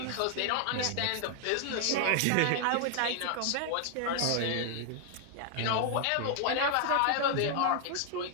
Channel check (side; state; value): both; different; correlation 0.00